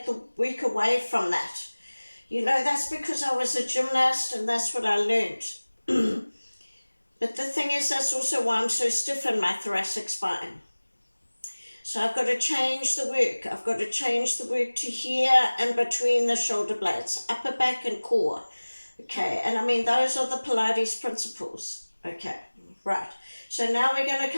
the work away from that. You know, that's because I was a gymnast and that's what I learned. But the thing is, that's also why I'm so stiff in my thoracic spine. So I've got to change the work. I've got to change the work to here and between the shoulder blades, upper back and core. Okay, and I mean, those are the Pilates principles. Okay, right. So now we're going to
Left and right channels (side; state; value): both; inverted; correlation -1.00